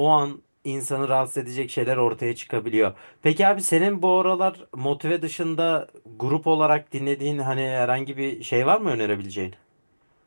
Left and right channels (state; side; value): inverted; both; correlation -1.00